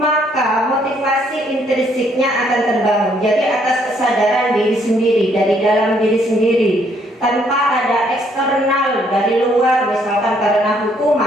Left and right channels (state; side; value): normal; both; correlation 0.68